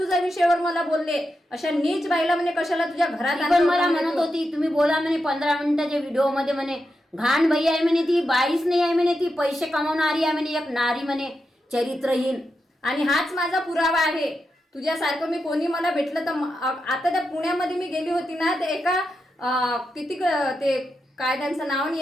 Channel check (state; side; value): normal; both; correlation 0.87